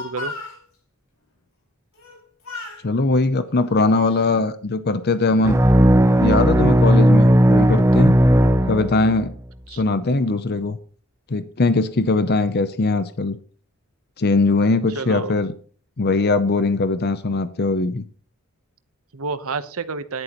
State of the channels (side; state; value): both; normal; correlation 0.63